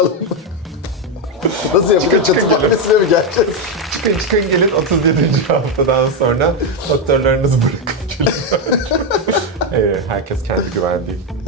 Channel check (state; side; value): normal; both; correlation 0.06